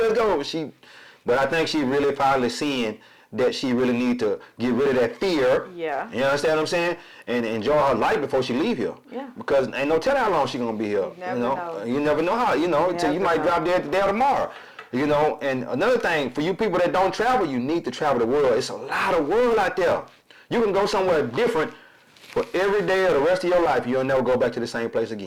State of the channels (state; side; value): identical; both; correlation 1.00